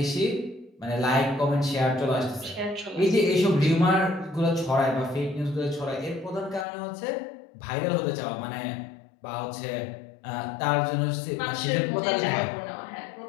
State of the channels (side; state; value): right; drops out; at 6.7 s